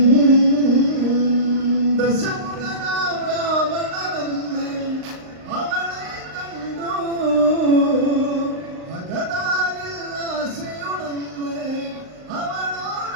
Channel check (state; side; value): late; left; 38 ms